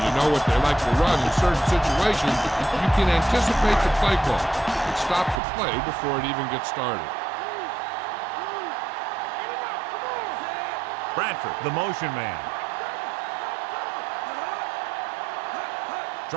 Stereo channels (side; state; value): left; drops out; at 5.4 s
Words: you know what they like to run in certain situations, you can anticipate the play call and stop the play before it even gets started. Bradford, the motion man.